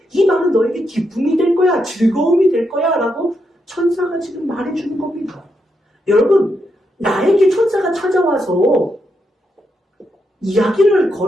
이 말은 너에게 기쁨이 될 거야. 즐거움이 될 거야. 라고 천사가 지금 말해주는 겁니다. 여러분, 나에게 천사가 찾아와서 이야기를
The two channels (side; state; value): both; normal; correlation 0.82